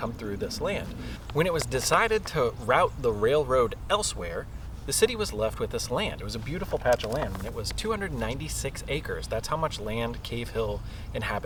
through this land. When it was decided to route the railroad elsewhere, the city was left with this land. It was a beautiful patch of land, and it was 296 acres. That's how much land Cave Hill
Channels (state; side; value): identical; both; correlation 1.00